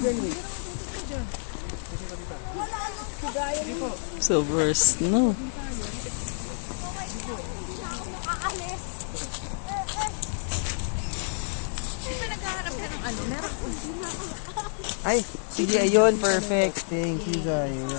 eh. Silver snow. Ay, sige, ayun, perfect. Thank you,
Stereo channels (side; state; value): right; silent; digital silence